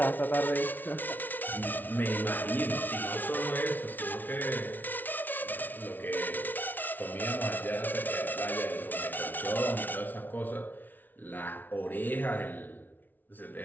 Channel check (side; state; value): right; late; 0.085 ms